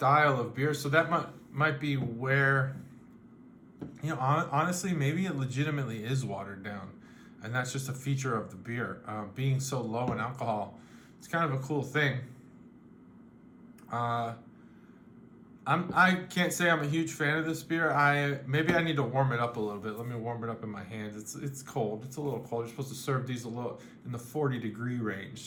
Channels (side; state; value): both; identical; correlation 1.00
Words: of beer. So that might be where, honestly, maybe it legitimately is watered down, and that's just a feature of the beer. Being so low in alcohol, it's kind of a cool thing. I can't say I'm a huge fan of this beer. Maybe I need to warm it up a little bit. Let me warm it up in my hands. It's cold. It's a little cold. You're supposed to serve these a little in the 40-degree range,